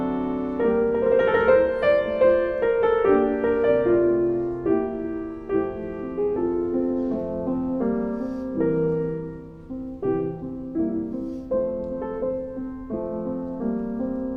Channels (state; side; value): identical; both; correlation 1.00